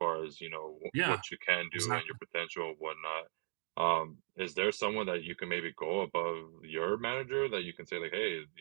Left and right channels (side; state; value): left; silent; digital silence